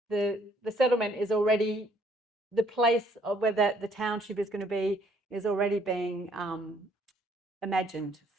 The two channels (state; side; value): normal; both; correlation 0.64